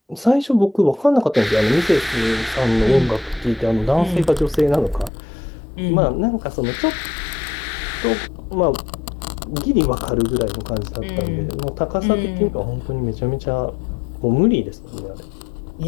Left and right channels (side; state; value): right; drops out; at 5.1 s